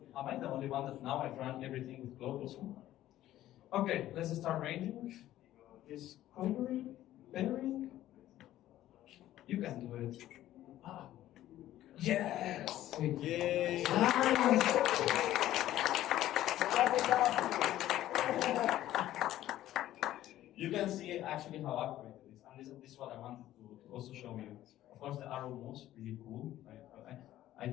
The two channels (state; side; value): quieter; right; 13.7 dB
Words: Am I the only one that now I've run everything with Claude also? Okay, let's start ranging. Is covering, pairing. You can do it. Ah. Yes! Yay! You can see actually how accurate it is, and this is what I wanted to also show you. Of course, the arrow moves really cool. I